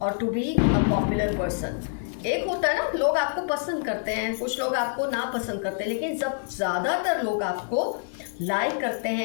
और to be a popular person. एक होता है ना, लोग आपको पसंद करते हैं, कुछ लोग आपको ना पसंद करते हैं, लेकिन जब ज़्यादातर लोग आपको लाइक करते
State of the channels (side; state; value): right; silent; digital silence